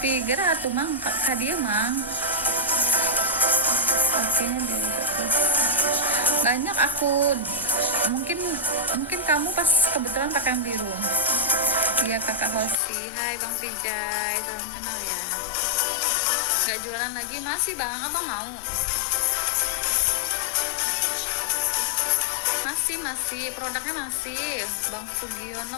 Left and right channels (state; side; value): drops out; right; at 12.8 s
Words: Gerak tuh mang, kak dia mang. Oke-nya banyak aku. Mungkin kamu pas kebetulan pakai yang biru. Iya kakak Hosi. Hai bang Pijay, salam kenal ya. Nggak jualan lagi? Masih bang, abang mau? Masih produknya masih. Bang